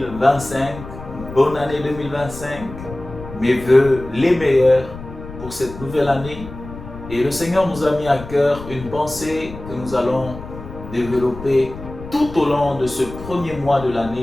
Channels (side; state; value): left; noise; rumble, 13 dB below the sound